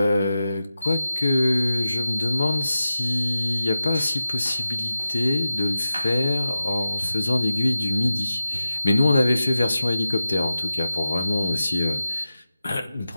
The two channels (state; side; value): inverted; both; correlation -0.92